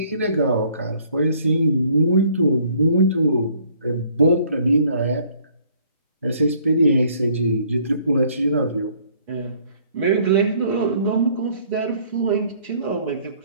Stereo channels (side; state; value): both; inverted; correlation -0.60